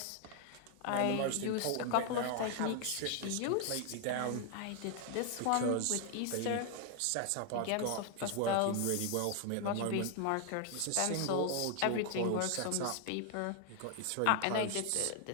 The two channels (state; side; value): different; both; correlation 0.00